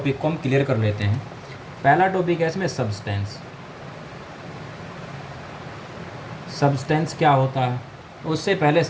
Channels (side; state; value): both; identical; correlation 1.00